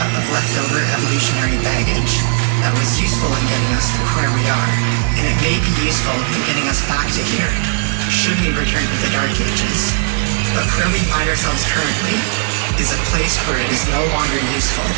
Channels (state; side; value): silent; left; digital silence